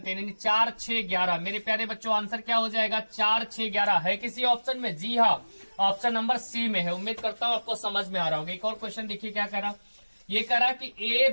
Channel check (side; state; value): both; inverted; correlation -1.00